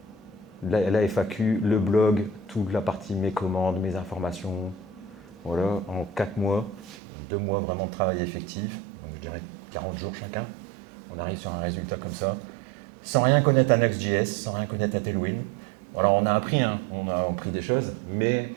la FAQ, le blog, toute la partie mes commandes, mes informations. Voilà, en 4 mois, 2 mois vraiment de travail effectif, donc je dirais 40 jours chacun. On arrive sur un résultat comme ça, sans rien connaître à Next.js, sans rien connaître à Tailwind. Alors on a appris, hein, on a appris des choses, mais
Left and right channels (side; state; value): left; drops out; at 7.0 s